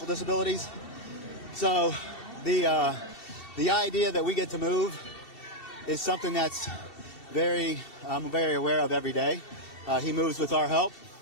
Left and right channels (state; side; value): late; right; 2.7 ms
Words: So the idea that we get to move is something that's I'm very aware of every day. He moves with our help,